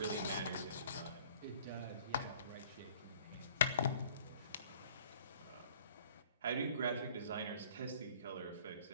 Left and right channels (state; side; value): inverted; both; correlation -0.54